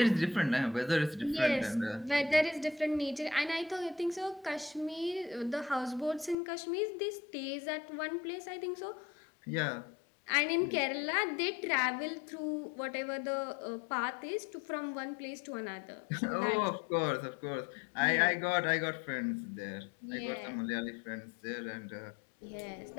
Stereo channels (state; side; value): drops out; right; at 6.4 s